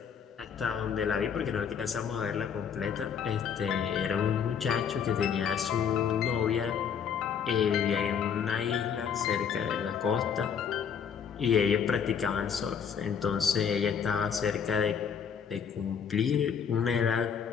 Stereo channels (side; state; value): right; quieter; 7.3 dB